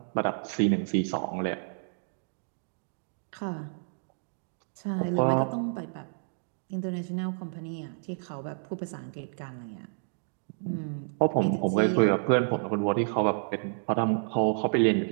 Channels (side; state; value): left; silent; digital silence